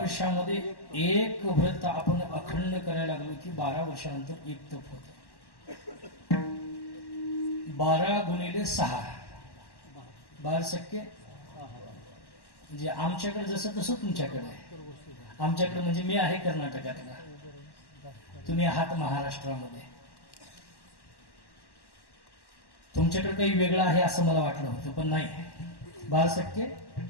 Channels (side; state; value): right; late; 1.1 ms